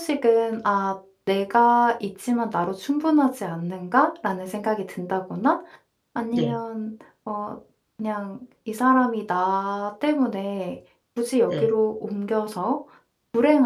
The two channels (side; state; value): both; identical; correlation 1.00